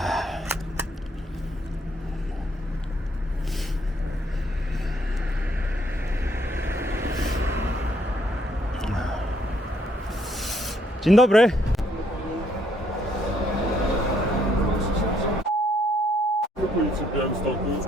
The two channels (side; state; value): both; normal; correlation 0.69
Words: Dzień dobry. Policji w Białymstoku.